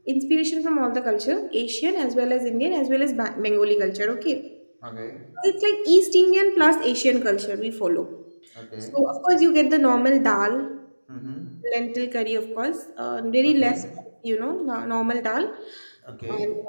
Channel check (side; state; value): both; inverted; correlation -1.00